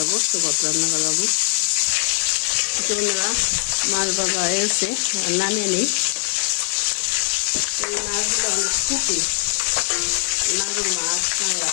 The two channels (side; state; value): right; silent; 63 dB below the other